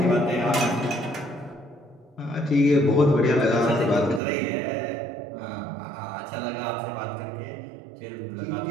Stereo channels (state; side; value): drops out; left; at 4.2 s